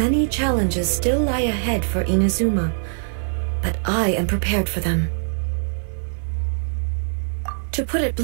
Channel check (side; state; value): left; silent; 57 dB below the other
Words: challenges still lie ahead for Inazuma, but I am prepared for them. To put it